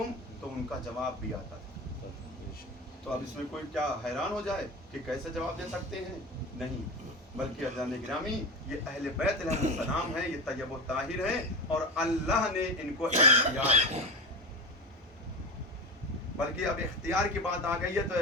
تو ان کا جواب بھی آتا تھا. تو اب اس میں کوئی کیا حیران ہو جائے کہ کیسے جواب دے سکتے ہیں؟ نہیں, بلکہ عزیزان گرامی یہ اہل بیت علیہ السلام ہیں, یہ طیب و طاہر ہیں اور اللہ نے ان کو اختیار, بلکہ اب اختیار کی بات آ گئی ہے تو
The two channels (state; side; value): normal; both; correlation 0.24